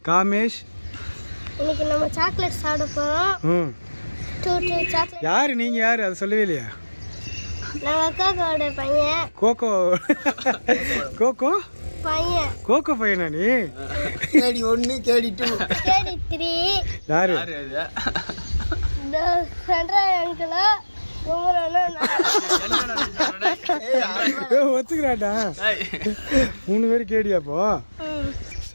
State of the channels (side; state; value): both; inverted; correlation -1.00